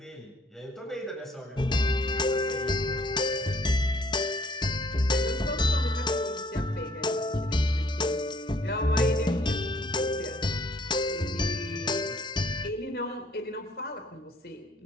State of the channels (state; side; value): normal; both; correlation 0.61